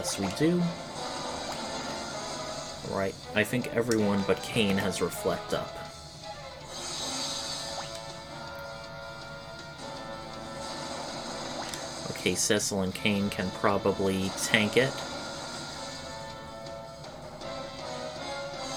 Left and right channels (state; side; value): identical; both; correlation 1.00